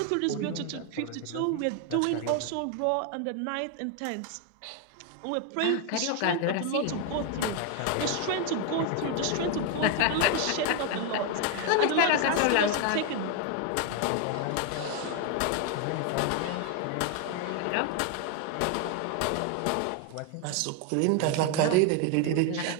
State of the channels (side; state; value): both; different; correlation 0.01